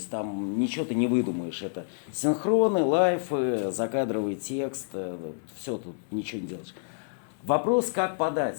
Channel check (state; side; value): silent; right; 56 dB below the other